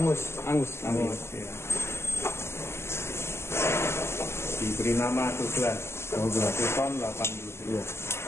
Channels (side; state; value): right; late; 0.12 ms